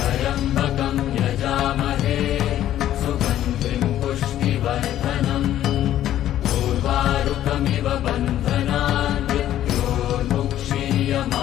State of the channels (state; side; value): quieter; right; 12.3 dB